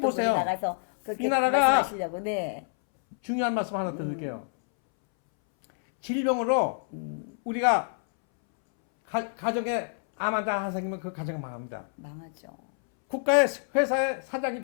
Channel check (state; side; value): silent; right; 60 dB below the other